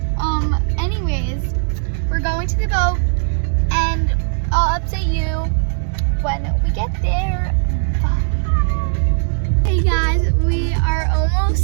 Anyways, we're going to the boat and I'll update you when we get there. Bye. Hey guys, we are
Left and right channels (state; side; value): silent; left; digital silence